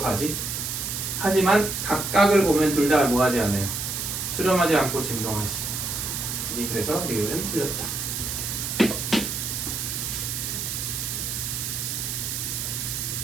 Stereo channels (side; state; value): right; noise; hiss, 3 dB below the sound